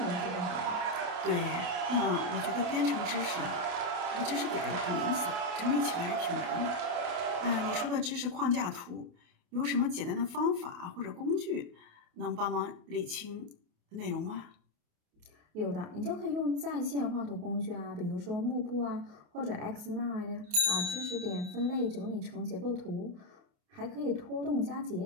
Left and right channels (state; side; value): late; left; 28 ms